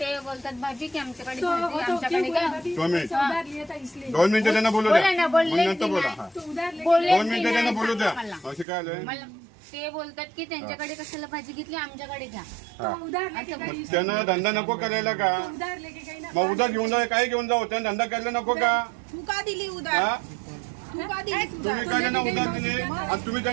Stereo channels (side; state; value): left; drops out; at 8.7 s